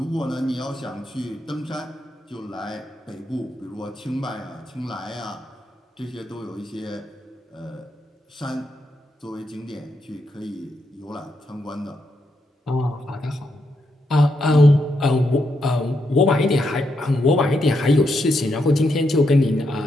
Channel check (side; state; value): both; normal; correlation 0.81